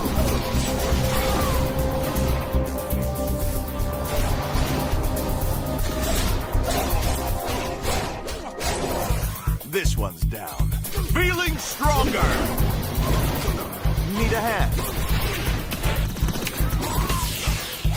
This one's down. Feeling stronger! Need a hand?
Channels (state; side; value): identical; both; correlation 1.00